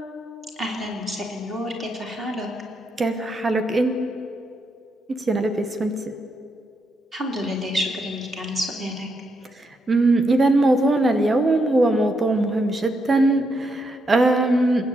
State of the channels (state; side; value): normal; both; correlation 0.80